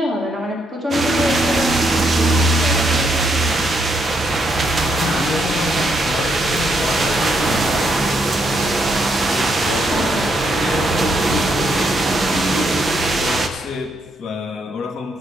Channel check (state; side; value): normal; both; correlation 0.76